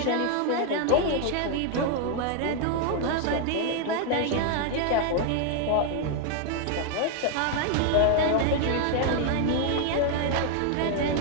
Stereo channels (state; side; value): different; both; correlation 0.00